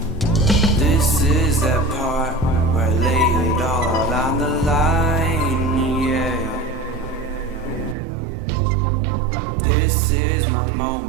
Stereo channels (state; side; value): drops out; left; at 8.0 s